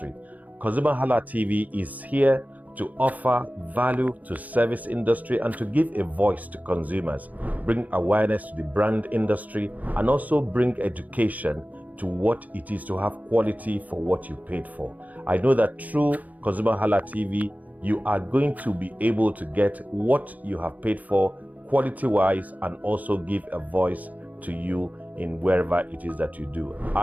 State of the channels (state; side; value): late; left; 0.077 ms